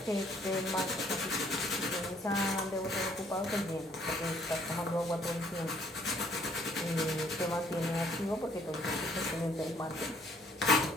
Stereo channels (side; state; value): both; normal; correlation 0.63